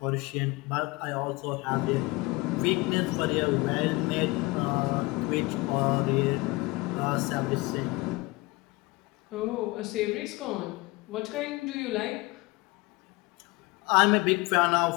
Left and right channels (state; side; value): quieter; right; 23.1 dB